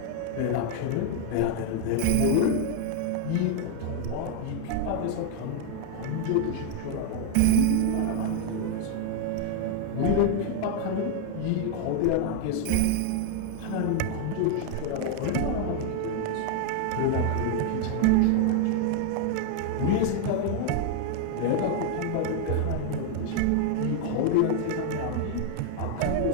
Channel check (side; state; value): both; different; correlation 0.00